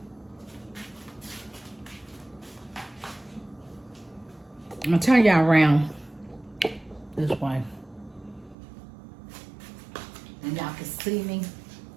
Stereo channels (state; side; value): drops out; left; at 8.6 s